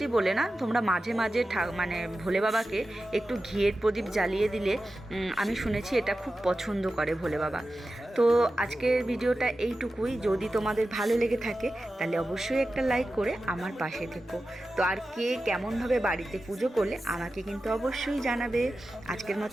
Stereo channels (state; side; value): normal; both; correlation 0.93